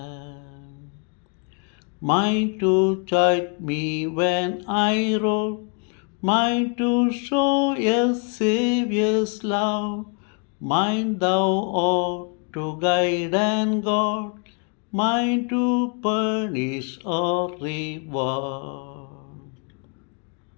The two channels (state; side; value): quieter; right; 38.1 dB